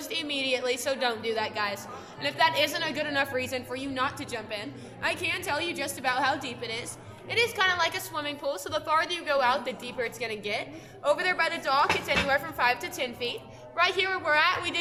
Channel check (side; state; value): both; identical; correlation 1.00